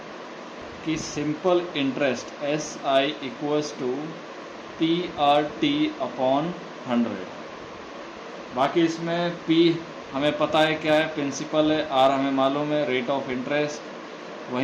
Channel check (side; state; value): both; identical; correlation 1.00